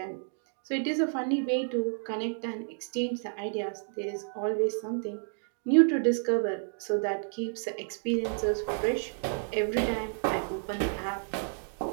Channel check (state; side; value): silent; left; digital silence